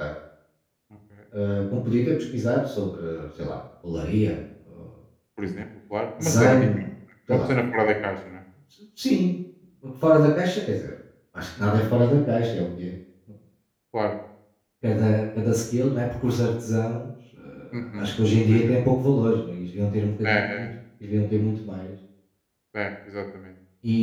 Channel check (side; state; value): both; identical; correlation 1.00